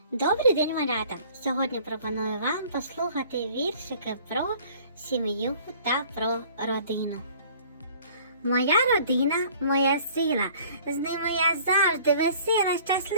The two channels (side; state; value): both; inverted; correlation -0.52